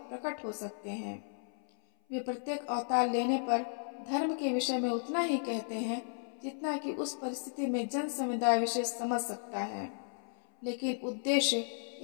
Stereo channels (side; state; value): right; silent; 55 dB below the other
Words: प्रकट हो सकते हैं। वे प्रत्येक अवतार लेने पर धर्म के विषय में उतना ही कहते हैं जितना कि उस परिस्थिति में जन समुदाय विशेष समझ सकता है, लेकिन उद्देश्य